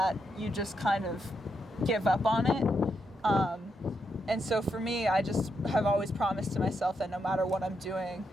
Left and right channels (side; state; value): both; normal; correlation 0.81